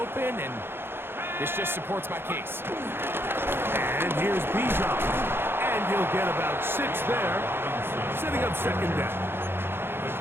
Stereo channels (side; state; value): left; late; 0.11 ms